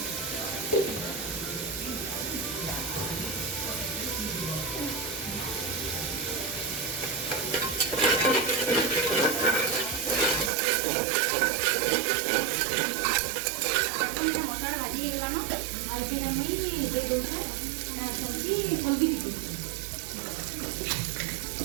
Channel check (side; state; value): left; drops out; at 10.5 s